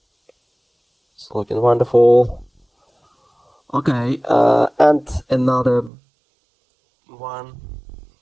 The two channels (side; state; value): left; drops out; at 5.9 s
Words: It's looking wonderful. Okay, and another one,